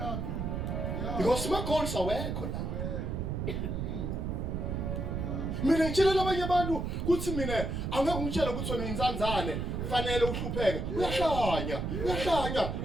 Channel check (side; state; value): right; noise; rumble, 2 dB below the sound